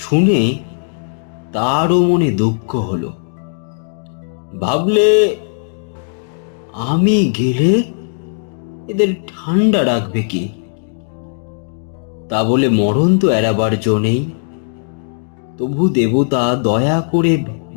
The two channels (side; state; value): right; silent; digital silence